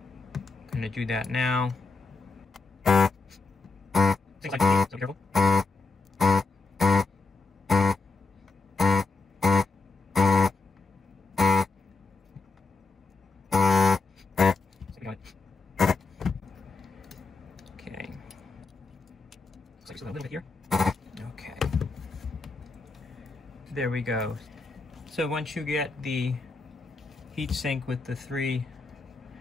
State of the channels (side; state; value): right; quieter; 3.9 dB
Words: going to do that now. Things like so careful. Okay. Looks like just a little bit here. Okay. There we go. So once you get the heatsink with the 3